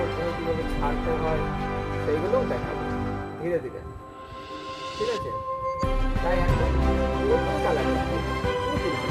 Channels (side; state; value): both; identical; correlation 1.00